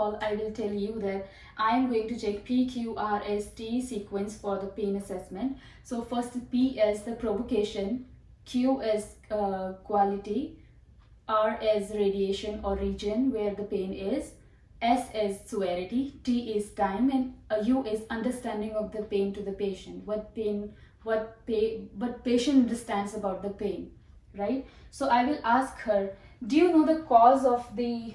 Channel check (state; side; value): identical; both; correlation 1.00